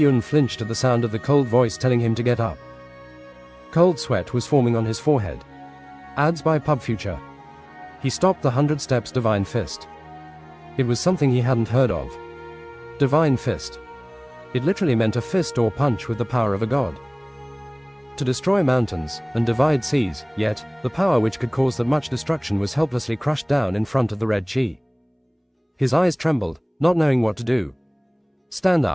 flinched at the sound of the cold voice telling him to get up. Cold sweat was forming on his forehead. Ads by Pub Future. He stopped the 100 Steps Divine Fist. It was something he hadn't heard of. Divine Fist. It literally meant a fist or punch with the power of a god. To destroy mountains and divide seas, yet the power which could cause that much destruction was helplessly crushed down in front of the red chi. His eyes trembled, not knowing what to do. "Stand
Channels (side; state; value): both; identical; correlation 1.00